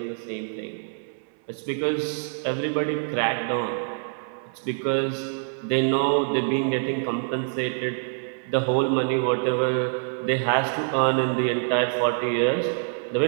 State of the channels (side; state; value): left; silent; 61 dB below the other